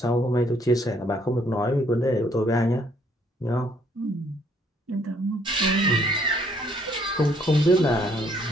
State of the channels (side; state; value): both; normal; correlation 0.66